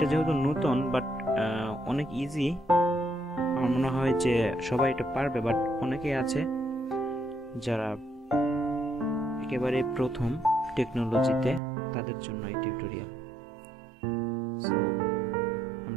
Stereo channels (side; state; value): left; drops out; at 11.6 s